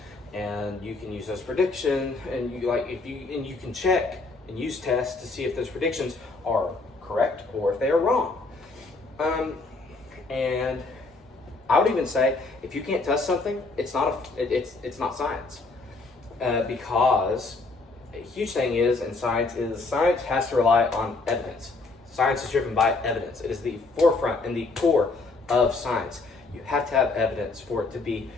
and you can use those predictions, and you can check and use tests to see if those predictions are correct or if they are wrong. And I would even say, if you can't test something, it's not science, because a huge thing in science has to rely on evidence. Science is driven by evidence. It is the forefront and the core of science. You have to have evidence for it to be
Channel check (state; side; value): quieter; right; 3.5 dB